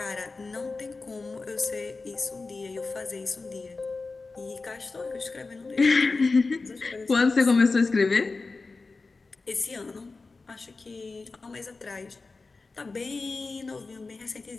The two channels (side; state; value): right; quieter; 3.9 dB